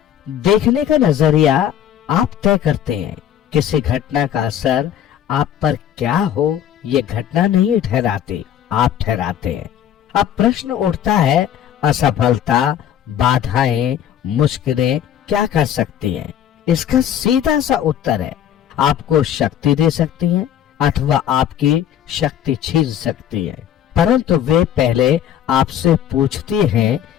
देखने का नजरिया आप तय करते हैं। किसी घटना का असर आप पर क्या हो ये घटना नहीं ठहराती, आप ठहराते हैं। अब प्रश्न उठता है, असफलता, बाधाएं, मुश्किलें क्या कर सकती हैं? इसका सीधा सा उत्तर है, आपको शक्ति दे सकती हैं अथवा आपकी शक्ति छीन सकती हैं। परंतु वे पहले आपसे पूछती हैं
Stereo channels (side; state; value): right; quieter; 10.2 dB